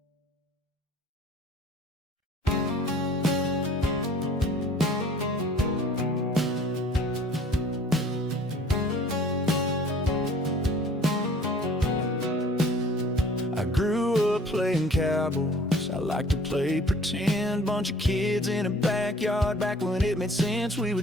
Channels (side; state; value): both; normal; correlation 0.51